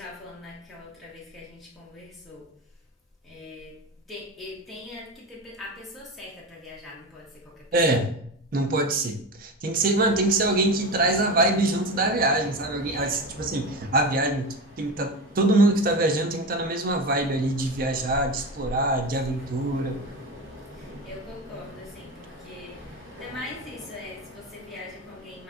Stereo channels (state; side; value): normal; both; correlation 0.24